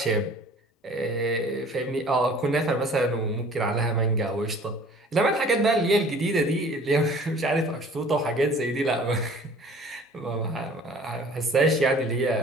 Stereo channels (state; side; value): normal; both; correlation 0.49